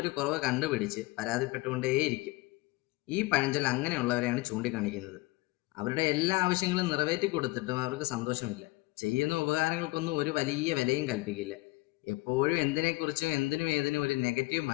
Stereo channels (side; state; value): right; quieter; 22.2 dB